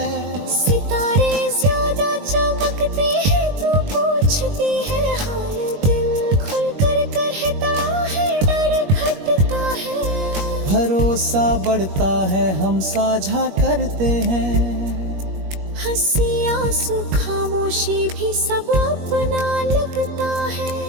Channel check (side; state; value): left; late; 21 ms